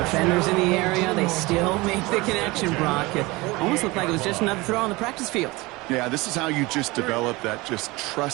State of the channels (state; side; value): quieter; left; 22.6 dB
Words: in the area, they still make the connection, Brock. It almost looked like it was just another throw on the practice field. Yeah, this is how you just develop that just